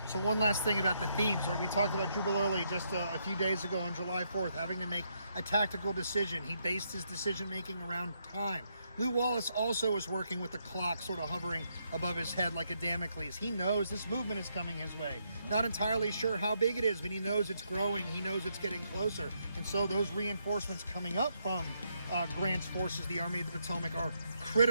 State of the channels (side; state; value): both; inverted; correlation -0.77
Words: So one last thing about the themes. We talked about Jubal Early just a few days ago on July 4th, having to make a tactical decision. He based his decision-making around time. Lew Wallace also is working with the clock sort of hovering above his head like a Damocles. He knows this movement is coming his way. Not entirely sure how big it is, but he knows it's growing. He knows it's getting closer. And so those reinforcements coming up from Grant's forces, the Army of the Potomac, are